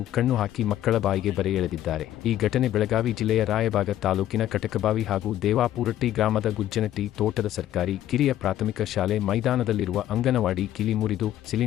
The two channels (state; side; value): quieter; right; 12.6 dB